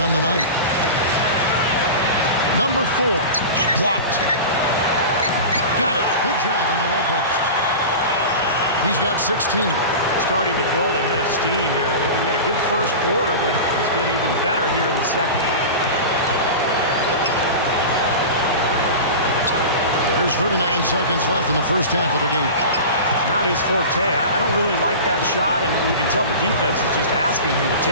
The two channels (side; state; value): both; inverted; correlation -0.30